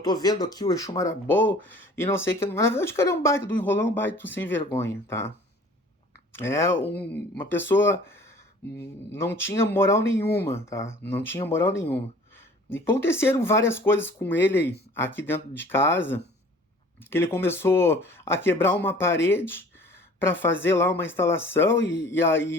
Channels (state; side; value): normal; both; correlation 0.49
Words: tô vendo aqui o Exu Marabô, e não sei o que. Na verdade, o cara é um baita do enrolão, um baita do sem vergonha, tá? Uma pessoa não tinha moral nenhuma, tá? Não tinha moral nenhuma. E aconteceram várias coisas com ele aqui dentro de casa, que ele começou a quebrar uma parede para fazer lá uma instalação e